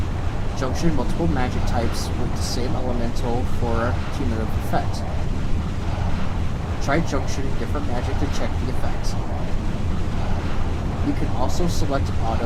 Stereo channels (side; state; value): both; identical; correlation 1.00